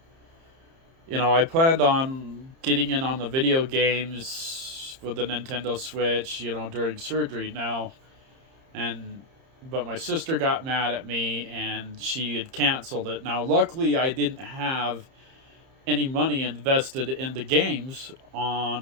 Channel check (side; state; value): left; late; 30 ms